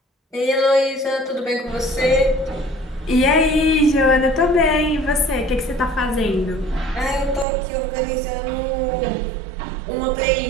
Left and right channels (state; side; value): drops out; left; at 7.5 s